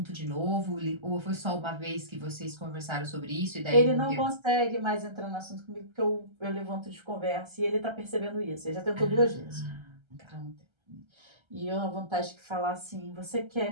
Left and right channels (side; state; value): left; late; 1.3 ms